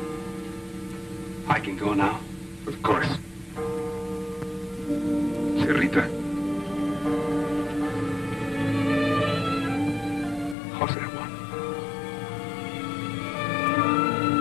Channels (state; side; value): drops out; right; at 10.6 s